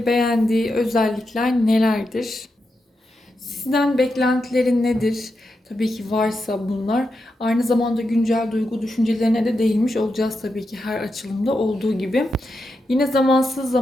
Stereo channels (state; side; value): normal; both; correlation 0.87